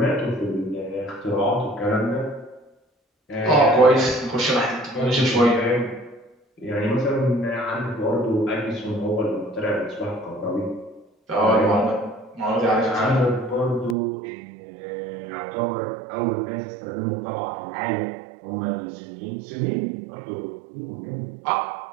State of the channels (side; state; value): left; drops out; at 14.0 s